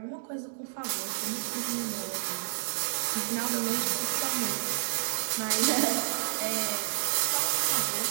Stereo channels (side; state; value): left; silent; digital silence